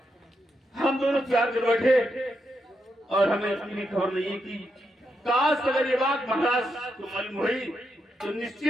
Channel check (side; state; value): both; normal; correlation 0.82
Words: हम दोनों प्यार कर बैठे और हमें इतनी खबर नहीं कि काश अगर ये बात महाराज को मालूम हुई तो